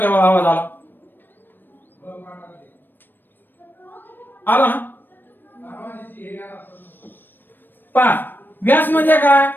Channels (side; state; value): right; late; 0.094 ms